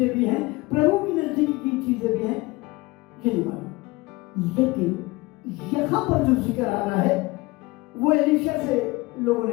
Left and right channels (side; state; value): right; quieter; 22.2 dB